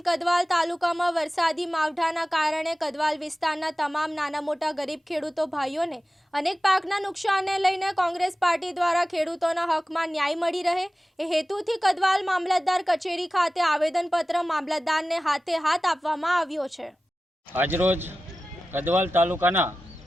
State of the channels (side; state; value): both; normal; correlation 0.95